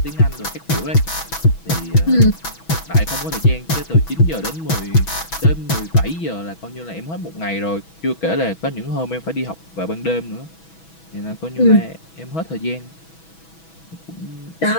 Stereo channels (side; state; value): right; late; 6.1 ms